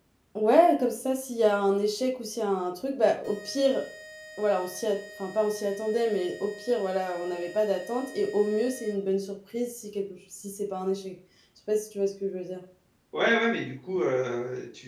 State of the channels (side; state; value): both; identical; correlation 1.00